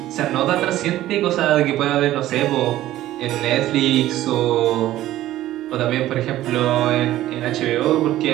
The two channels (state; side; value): quieter; left; 14.4 dB